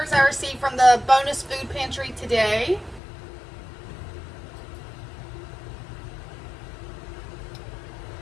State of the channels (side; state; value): right; drops out; at 3.0 s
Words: I received from the bonus food pantry today.